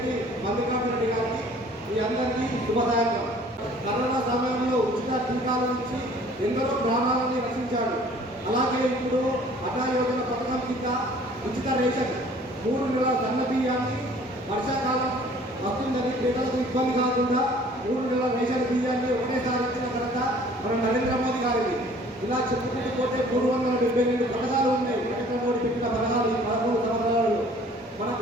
మల్లికార్జున రెడ్డి గారికి మీ అందరికీ శుభదాయకం. కరోనా సమయంలో ఉచిత టీకాల నుంచి ఎందరో ప్రాణాలని రక్షించాడు. అలాగే ఇప్పుడు అటా యోజన పథకం కింద ఉచిత రేషన్ 3 నెలల సన్న బియ్యాన్ని వర్షాకాలం వస్తుందని పేదలకు ఇబ్బంది కాకుండా 3 నెలల రేషన్ బియ్యాన్ని ఒకటేసారి ఇచ్చిన ఘనత మన నరేంద్ర మోదీ గారికి. ఇలా చెప్పుకుంటూ పోతే 372 పథకాలు ఉన్నాయి. నరేంద్ర మోదీ పెట్టిన పథకాలు ఈ 13 సంవత్సరాలు మన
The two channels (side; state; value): both; normal; correlation 0.53